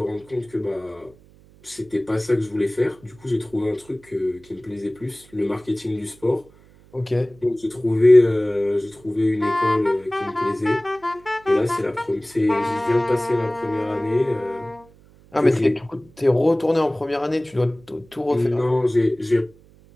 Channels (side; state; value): right; noise; hum, 27 dB below the sound